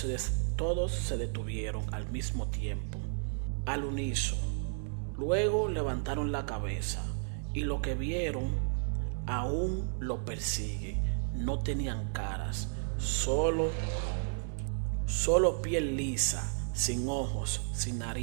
detuvieron al mismo tiempo, al unísono. Luego levantaron la cabeza y lo que vieron aún lo persigue. No tenían caras, solo piel lisa, sin ojos, sin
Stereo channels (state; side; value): silent; left; digital silence